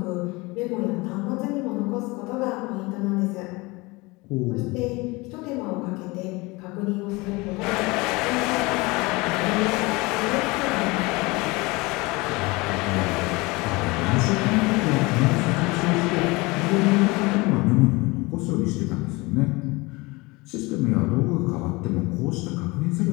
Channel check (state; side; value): quieter; right; 24.0 dB